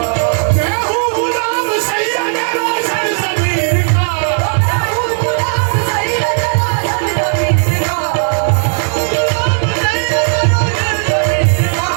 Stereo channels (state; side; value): silent; left; 56 dB below the other